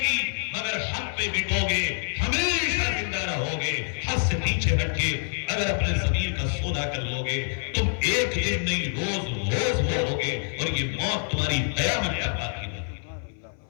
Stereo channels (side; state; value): right; silent; 57 dB below the other